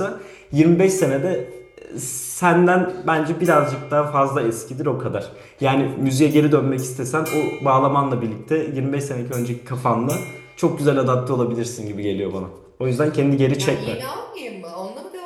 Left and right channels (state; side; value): identical; both; correlation 1.00